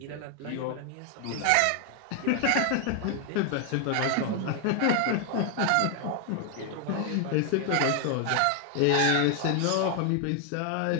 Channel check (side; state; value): both; different; correlation 0.00